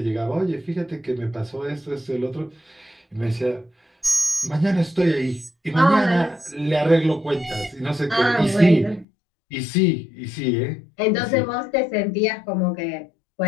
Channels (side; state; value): right; drops out; at 9.1 s